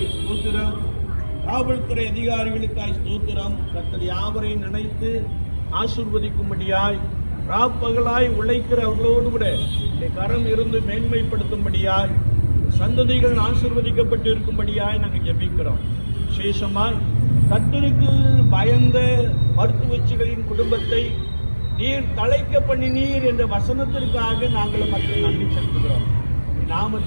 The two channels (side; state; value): both; inverted; correlation -1.00